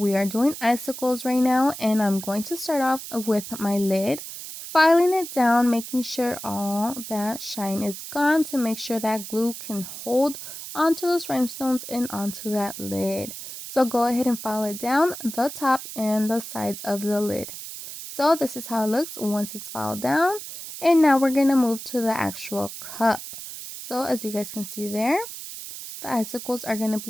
are doing icicles right now, and I'm going to start off with my lid, filing it down, making sure all that shine is gone to make sure that glue can hold onto those rhinestones and onto that lid. So go ahead and file it down the top and the sides of the lid. So this is how it looks once it's filed down, and now we're going to move to the actual cup. So as you guys can see there, the icicles are going to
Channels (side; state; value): right; noise; hiss, 10 dB below the sound